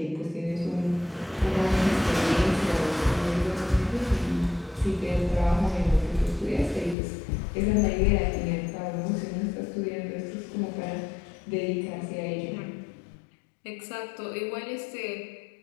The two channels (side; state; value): right; drops out; at 7.0 s